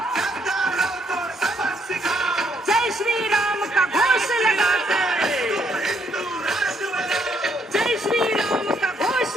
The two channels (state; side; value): normal; both; correlation 0.71